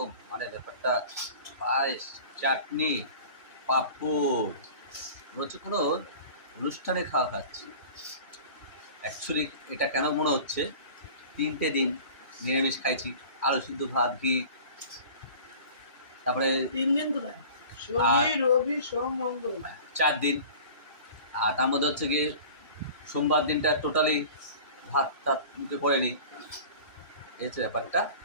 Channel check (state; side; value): inverted; both; correlation -0.41